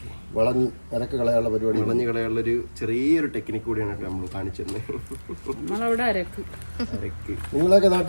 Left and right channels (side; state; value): both; inverted; correlation -1.00